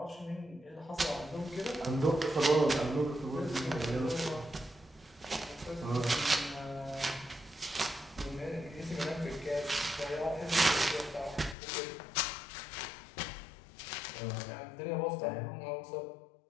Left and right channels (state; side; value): drops out; right; at 11.6 s